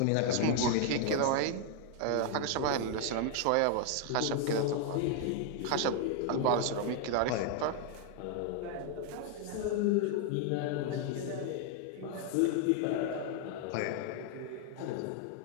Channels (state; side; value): different; both; correlation 0.00